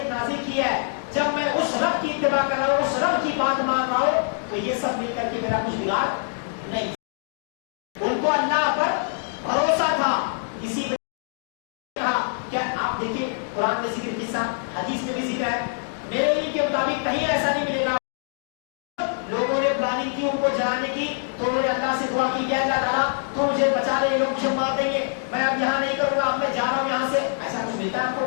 کی ہے, جب میں اس رب کی اتباع کر رہا ہوں, اس رب کی بات مان رہا ہوں, تو یہ سب مل کر کے میرا کچھ بگاڑ نہیں. ان کو اللہ پر بھروسہ تھا. اسی میں کہا کیا آپ دیکھیں قرآن میں ذکر قصہ, حدیث میں بھی ذکر ہے. میرے علم کے مطابق کہیں ایسا نہیں ملے گا لوگوں نے پلاننگ کی ان کو جلانے کی تو انہوں نے اللہ سے دعا کی کہ اللہ تعالیٰ تو مجھے بچا لے, لوگ مجھے مار دیں گے, میں اب یہاں نہیں کروں گا, اب میں جا رہا ہوں یہاں سے. ایسا کچھ ملتا ہے آپ کو؟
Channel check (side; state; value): right; silent; digital silence